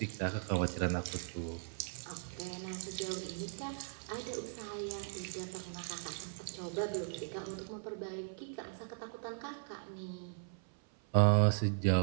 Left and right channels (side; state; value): left; silent; 52 dB below the other